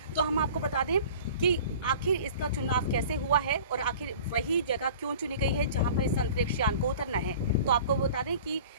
तो हम आपको बता दें कि आखिर इसका चुनाव कैसे हुआ है और आखिर वही जगह क्यों चुनी गई है जहां पर इस अंतरिक्ष यान को उतरना है। तो आपको बता दें कि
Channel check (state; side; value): inverted; both; correlation -0.43